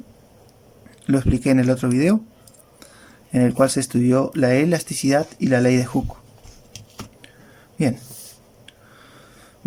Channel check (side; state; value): both; identical; correlation 1.00